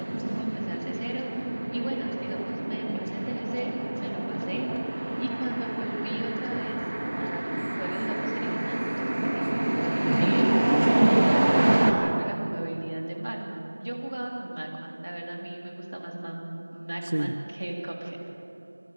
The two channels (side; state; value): both; inverted; correlation -1.00